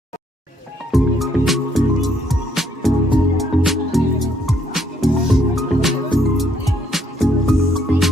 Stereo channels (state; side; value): normal; both; correlation 0.69